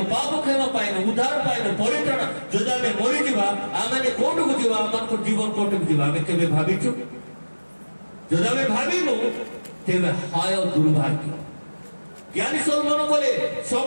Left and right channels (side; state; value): both; inverted; correlation -1.00